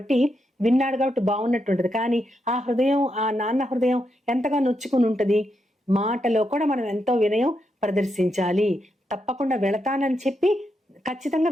విన్నాడు కాబట్టి బాగున్నట్టుంటది. కానీ ఆ హృదయం, ఆ నాన్న హృదయం ఎంతగా నొచ్చుకుని ఉంటుంది. మాటలో కూడా మనం ఎంతో వినయం ప్రదర్శించాలి. తప్పకుండా వెళతానని చెప్పి ఖచ్చితంగా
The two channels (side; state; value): both; normal; correlation 0.83